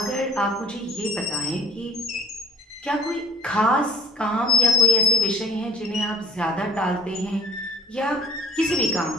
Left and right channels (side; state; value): both; normal; correlation 0.51